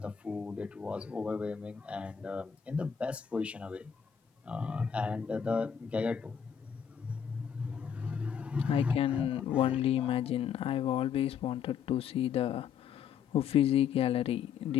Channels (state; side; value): quieter; right; 7.8 dB